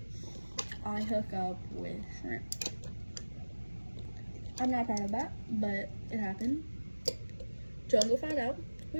I hook up with Shrimp. I'm not proud of that, but it happened. Jungle found out.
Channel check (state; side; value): inverted; both; correlation -1.00